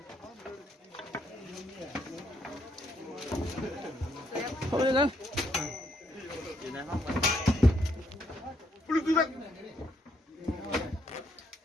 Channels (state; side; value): normal; both; correlation 0.73